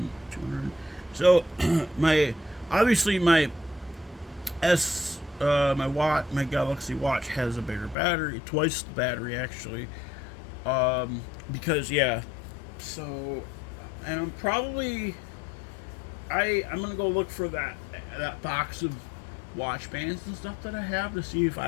200. So my Galaxy Watch has a bigger battery, twice the battery actually. Because yeah, so and I'm probably I'm gonna go look for that box of watch bands and stuff that I have to see if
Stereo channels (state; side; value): drops out; right; at 8.0 s